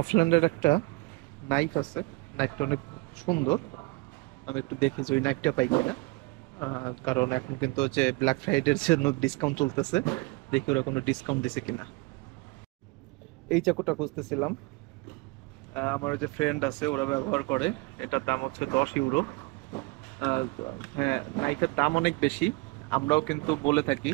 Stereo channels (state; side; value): quieter; left; 25.1 dB